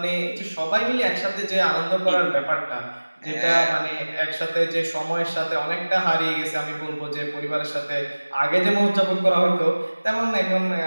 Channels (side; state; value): both; inverted; correlation -1.00